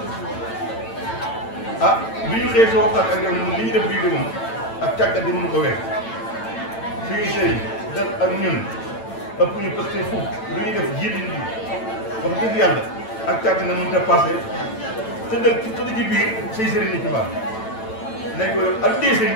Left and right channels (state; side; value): late; right; 9.0 ms